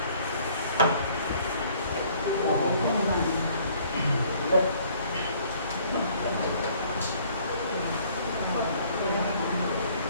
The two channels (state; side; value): inverted; both; correlation -0.59